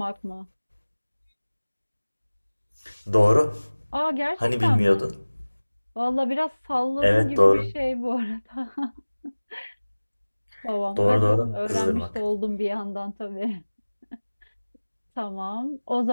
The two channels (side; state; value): both; inverted; correlation -1.00